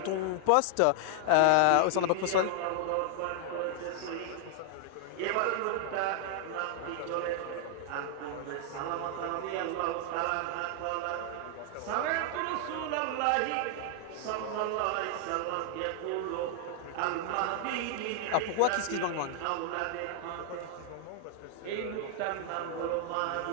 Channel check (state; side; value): different; both; correlation 0.00